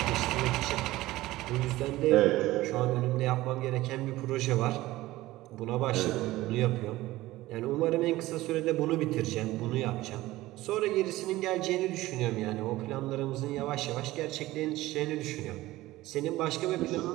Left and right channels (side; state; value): left; quieter; 17.4 dB